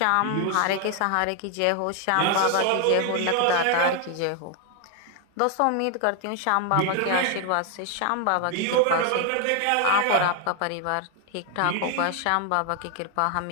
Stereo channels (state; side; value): different; both; correlation 0.00